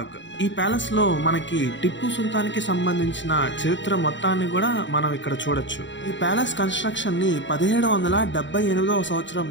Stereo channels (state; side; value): late; right; 0.54 ms